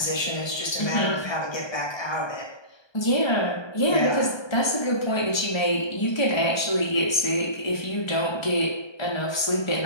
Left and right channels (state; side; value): late; right; 1.3 ms